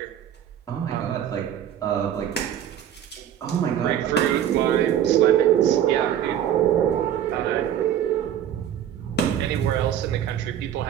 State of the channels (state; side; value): quieter; left; 10.1 dB